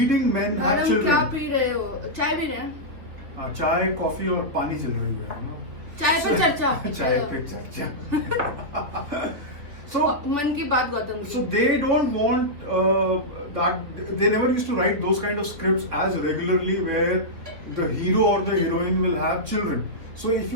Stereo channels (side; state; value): left; late; 3.4 ms